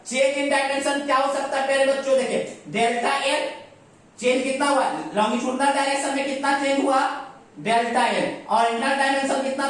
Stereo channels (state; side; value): identical; both; correlation 1.00